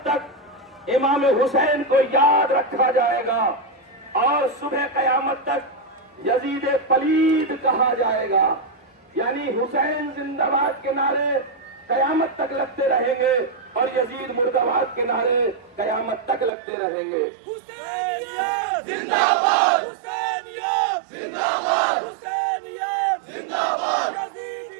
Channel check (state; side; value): drops out; left; at 16.5 s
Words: تک امام حسین کو یاد رکھا جائے گا اور صبح قیامت تک یزید پلید کہا جائے گا، یعنی حسین زندہ باد کے نعرے قیامت تک لگتے رہیں گے اور یزید مردہ باد کے نعرے قیامت تک لگتے رہیں گے۔ حسینیت زندہ باد، حسینیت زندہ باد، حسینیت زندہ باد،